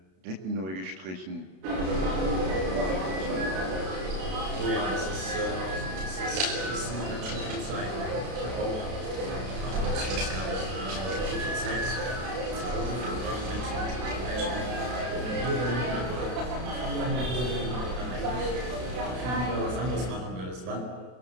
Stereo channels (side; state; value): left; late; 32 ms